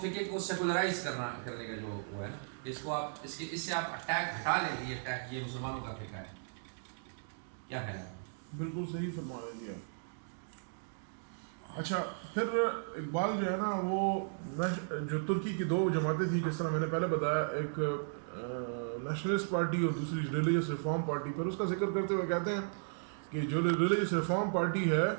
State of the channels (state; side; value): silent; left; digital silence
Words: کو سیکولرائز کرنے کا جو وہ ہے نا، اس کو آپ اس سے آپ اٹیک ہٹا لیں گے، یہ اٹیک یہ مسلمانوں کا فقہ ہے. کیا خیال ہے؟ بالکل صحیح فرما رہے ہیں. اچھا پھر اقبال جو ہے نا وہ جو ترکی کی دو جماعتیں تھیں جس طرح میں نے پہلے بتایا، ایک نیشنلسٹ پارٹی اور دوسری ریلیجس ریفارم پارٹی، پھر اس کا ذکر کرتے ہوئے کہتے ہیں کہ جو ریلیجس ریفارم پارٹی ہے